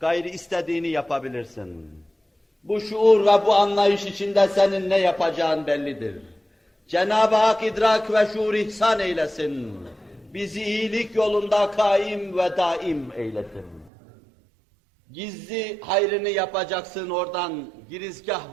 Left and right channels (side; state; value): left; drops out; at 13.9 s